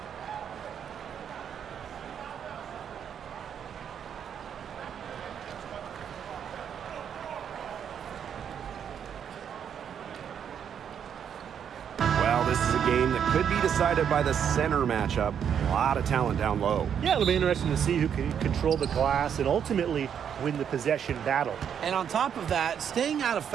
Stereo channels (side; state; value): left; quieter; 8.2 dB